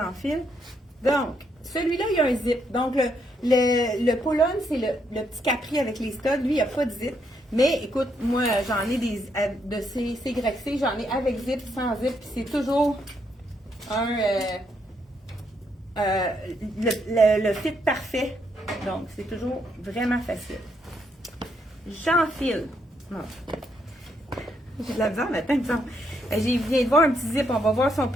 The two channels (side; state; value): both; normal; correlation 0.76